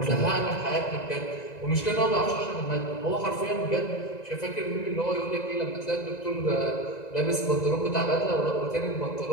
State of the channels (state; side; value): late; right; 1.9 ms